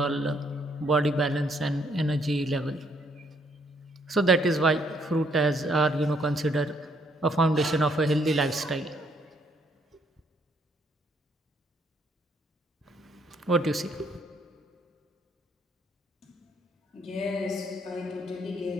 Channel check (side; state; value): both; normal; correlation 0.69